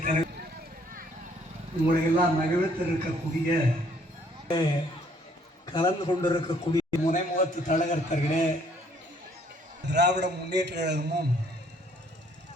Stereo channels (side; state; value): both; normal; correlation 0.64